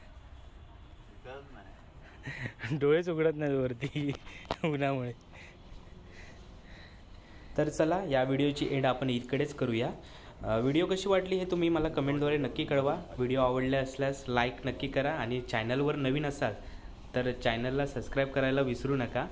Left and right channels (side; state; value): both; identical; correlation 1.00